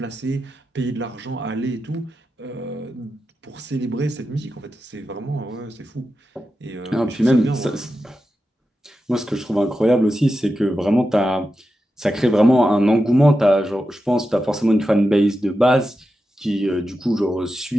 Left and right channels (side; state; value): both; normal; correlation 0.90